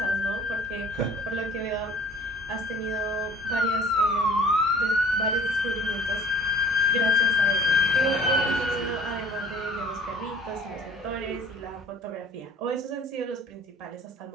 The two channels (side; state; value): both; normal; correlation 0.49